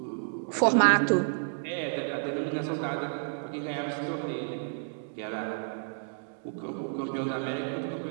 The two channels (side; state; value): left; silent; digital silence